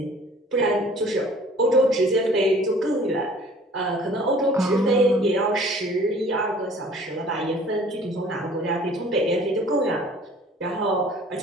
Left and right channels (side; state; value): both; normal; correlation 0.51